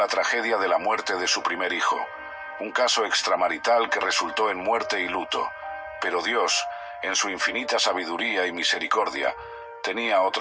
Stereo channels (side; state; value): both; identical; correlation 1.00